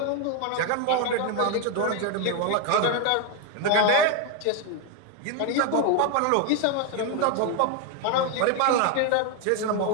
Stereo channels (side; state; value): both; different; correlation 0.01